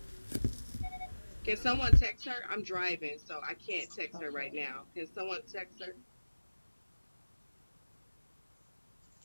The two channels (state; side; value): inverted; both; correlation -1.00